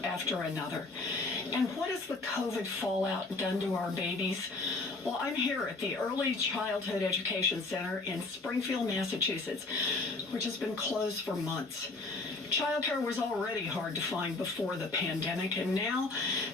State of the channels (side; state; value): right; quieter; 3.4 dB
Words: another. And what has the COVID fallout done to our babies? Well, I'm here at the Early Childhood Education Center in Springfield, Massachusetts, which has been closed for months. Childcare was already hard to find before the pandemic, and now